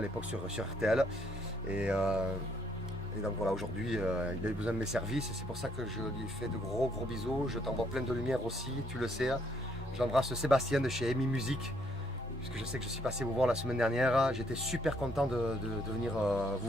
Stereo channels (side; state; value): both; normal; correlation 0.70